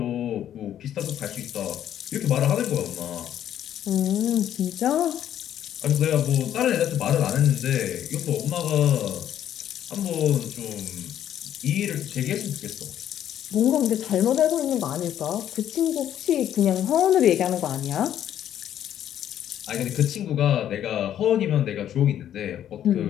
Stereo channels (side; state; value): right; quieter; 10.7 dB